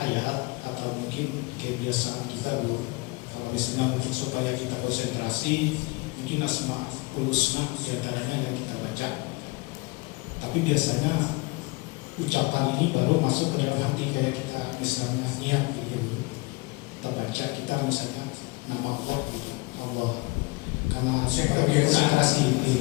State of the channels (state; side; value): quieter; right; 26.1 dB